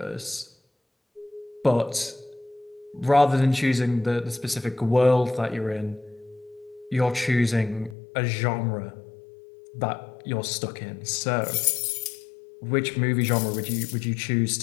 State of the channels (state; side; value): drops out; right; at 8.0 s